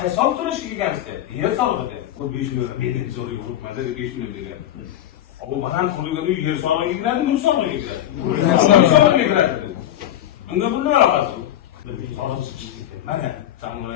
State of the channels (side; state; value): right; quieter; 12.0 dB